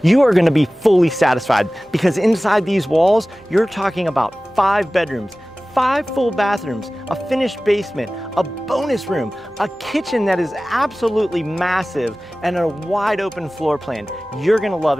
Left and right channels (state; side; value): normal; both; correlation 0.97